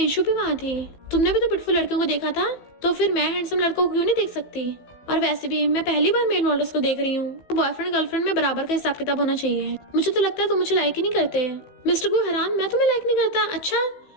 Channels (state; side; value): late; right; 15 ms